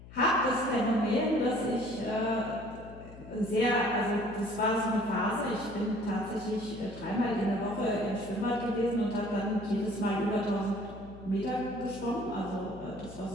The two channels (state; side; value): noise; left; hum, 17 dB below the sound